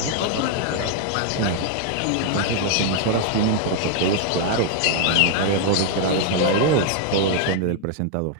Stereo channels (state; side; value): different; both; correlation 0.00